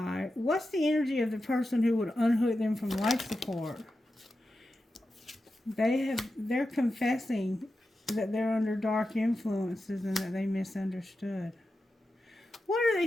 What's the energy of the person who would unhook them from life support? They're confessing that they're under dark influences and that they misunderstood. What are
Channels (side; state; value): both; normal; correlation 0.91